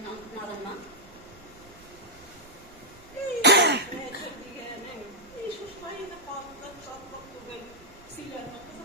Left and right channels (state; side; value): noise; right; rumble, 24 dB below the sound